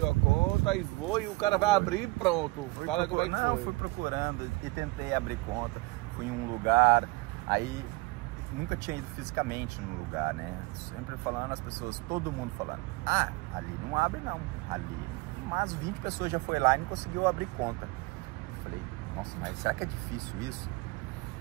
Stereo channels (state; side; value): quieter; left; 23.0 dB